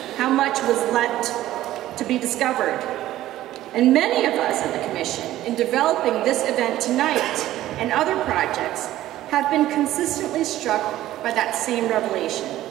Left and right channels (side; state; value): left; quieter; 14.4 dB